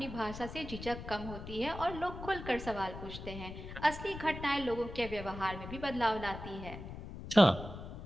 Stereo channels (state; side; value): noise; left; rumble, 10 dB below the sound